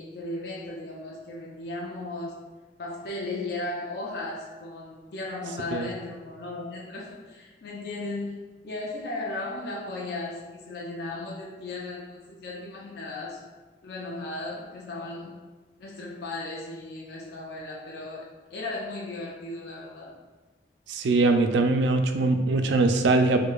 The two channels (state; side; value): normal; both; correlation 0.43